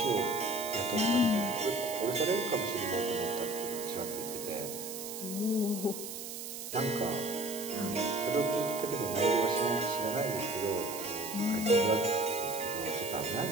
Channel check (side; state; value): right; noise; hiss, 8 dB below the sound